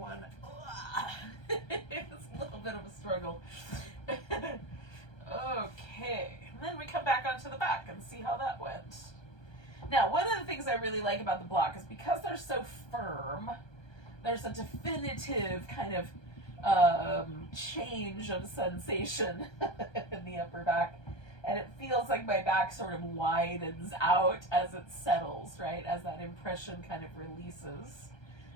is a little bit of a struggle. Okay, and then we come back onto the back and see how that went. Now, one of the things I really like about the block is because they're so firm, there's a definitive kind of change of sensation in the upper back. And it feels like my back sort of widens out as it settles, right? As that impression kind of releases,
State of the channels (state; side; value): late; right; 1.2 ms